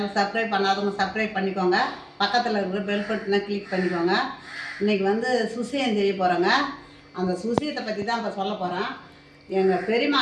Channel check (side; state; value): both; identical; correlation 1.00